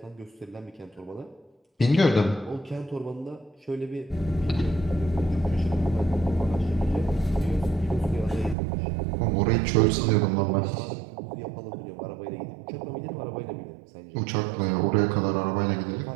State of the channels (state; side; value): drops out; left; at 8.6 s